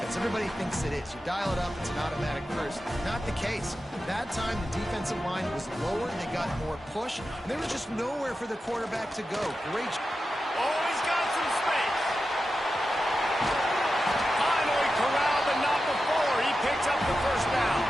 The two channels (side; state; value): both; normal; correlation 0.91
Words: Everybody thinks it is. You dial it up, it's an automatic first. Not the case. That time, the defensive line was lower. They got more push. And there was just nowhere for the quarterback to go. Great job. Oh, he's got some space. Finally corralled, but not before. He picks up the first down.